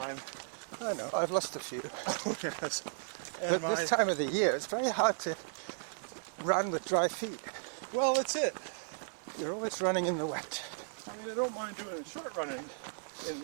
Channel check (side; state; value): left; silent; 54 dB below the other